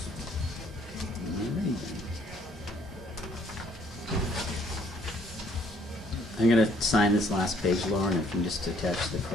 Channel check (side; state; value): both; normal; correlation 0.63